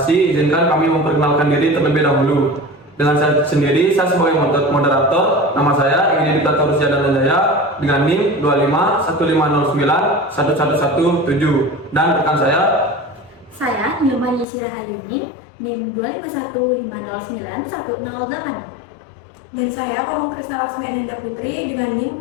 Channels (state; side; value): drops out; right; at 14.5 s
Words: izinkan kami memperkenalkan diri terlebih dahulu. Dengan saya sendiri, saya sebagai moderator, nama saya Ingin Diktator Rusjana Jaya dengan NIM 2515091117 dan rekan saya Nilma Yesira Hayuni, NIM 2515091008. Dan saya Komang Krisna Laksmi Ananda Putri dengan